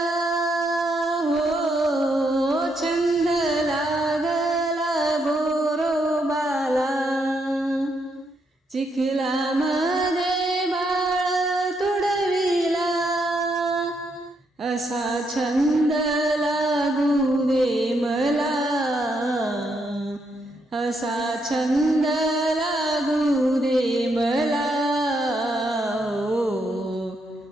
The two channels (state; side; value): normal; both; correlation 0.77